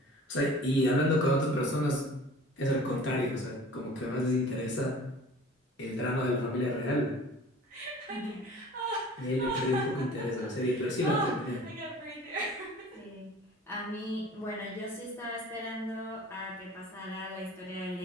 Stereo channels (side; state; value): both; normal; correlation 0.45